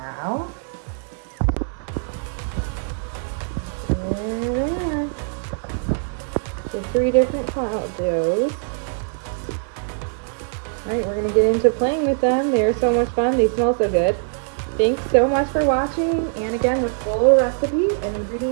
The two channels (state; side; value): silent; left; digital silence